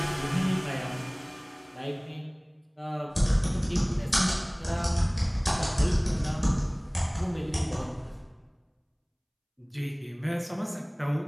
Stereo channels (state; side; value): identical; both; correlation 1.00